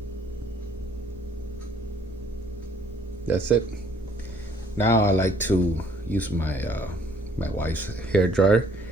That's it. Now I like to use my my wife's hair dryer,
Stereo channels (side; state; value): right; noise; rumble, 20 dB below the sound